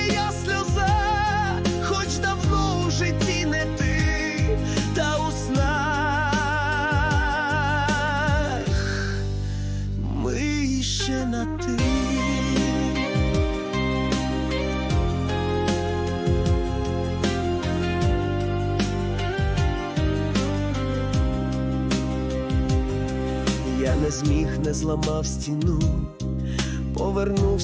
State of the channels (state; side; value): identical; both; correlation 1.00